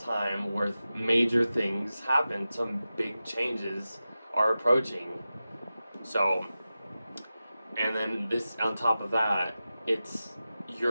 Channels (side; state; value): both; inverted; correlation -0.94